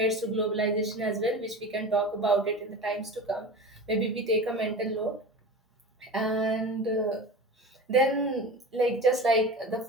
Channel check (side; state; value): both; normal; correlation 0.32